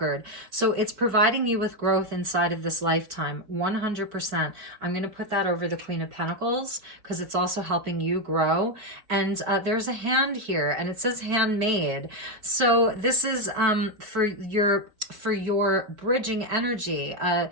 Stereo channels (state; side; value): late; left; 4.6 ms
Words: So it's providing you with growth inside of this lifetime, 100%. I'm going to put that over the Queen of Pentacles because it's also helping you grow. And there's a hand here, and it says handmade. So this is for your bridging energy,